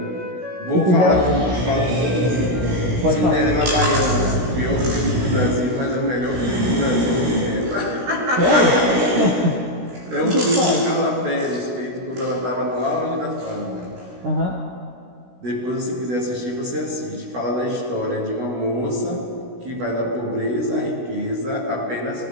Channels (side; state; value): left; late; 17 ms